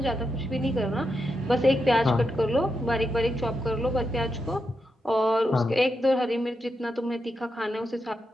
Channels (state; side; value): normal; both; correlation 0.85